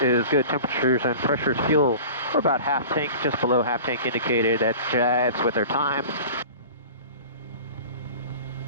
is good temperatures and pressures. Fuel, we're about half tank, just below half tank indicated. That jives with our time.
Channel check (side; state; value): both; inverted; correlation -0.39